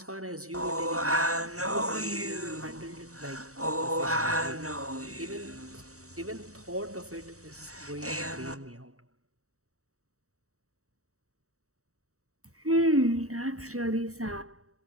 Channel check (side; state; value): left; late; 0.65 ms